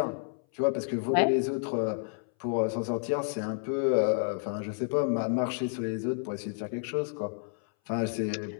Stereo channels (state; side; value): silent; right; 58 dB below the other